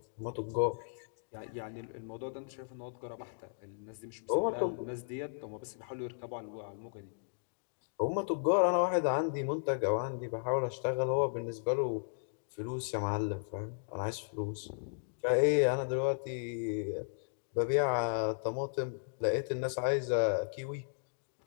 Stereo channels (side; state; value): right; silent; digital silence